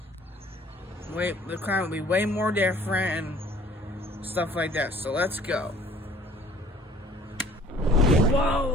the climate will be way more different and stuff like that. So let's go.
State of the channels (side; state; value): both; normal; correlation 0.54